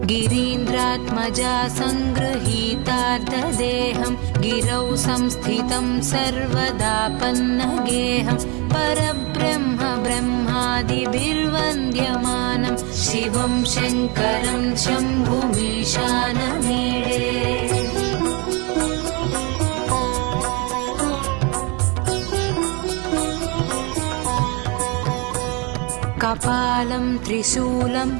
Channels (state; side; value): quieter; left; 30.2 dB